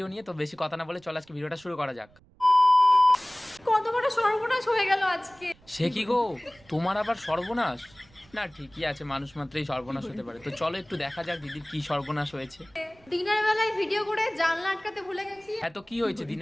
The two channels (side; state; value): right; noise; rumble, 29 dB below the sound